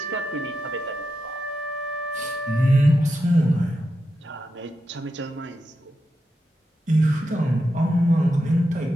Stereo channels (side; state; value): both; normal; correlation 0.87